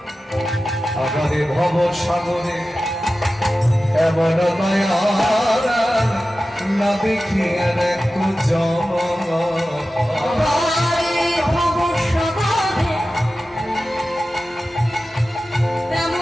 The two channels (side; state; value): both; normal; correlation 0.94